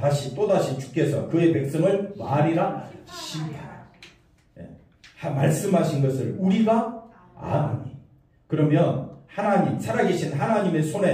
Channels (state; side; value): identical; both; correlation 1.00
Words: 또다시 주께서 그의 백성을 말이라 심판하라. 예. 말씀하신 것을 우리가 아노니. 그러면 하나님, 살아계신 하나님의